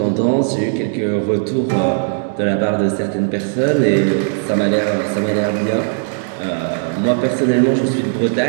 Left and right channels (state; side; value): silent; left; digital silence